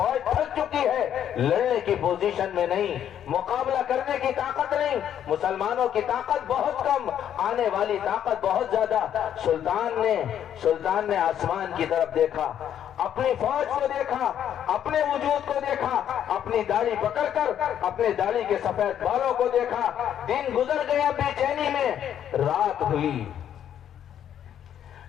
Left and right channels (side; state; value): right; quieter; 9.9 dB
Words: تھک چکی ہے، لڑنے کی پوزیشن میں نہیں، مقابلہ کرنے کی طاقت نہیں، مسلمانوں کی طاقت بہت کم، آنے والی طاقت بہت زیادہ۔ سلطان نے آسمان کی طرف دیکھا، اپنی فوج کو دیکھا، اپنے وجود کو دیکھا، اپنی داڑھی پکڑ کر اپنے داڑھی کے سفید بالوں کو دیکھا۔ دن گزر گیا بے چینی میں، رات ہوئی،